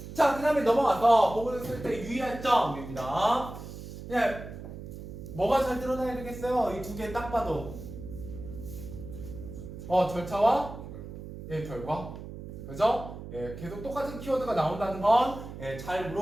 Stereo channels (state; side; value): noise; right; hum, 11 dB below the sound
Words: 자, 그 다음에 넘어가서 보고를 쓸 때 유의할 점입니다. 뭐가 잘 드러나야 되겠어요? 이 두 개 딱 봐도 절차와 결과. 그죠? 계속 똑같은 키워드가 나온다는 건 잘